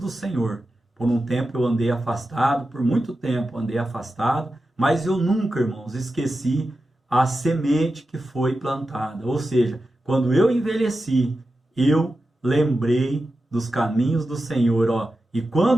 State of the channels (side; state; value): both; normal; correlation 0.91